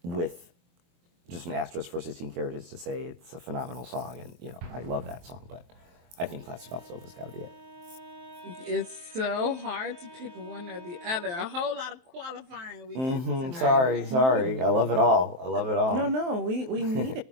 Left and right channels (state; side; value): late; left; 23 ms